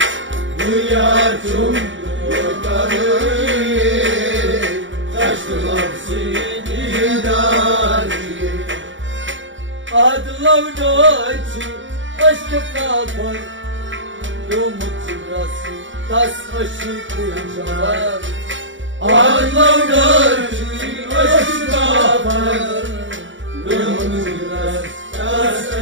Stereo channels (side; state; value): left; late; 0.55 ms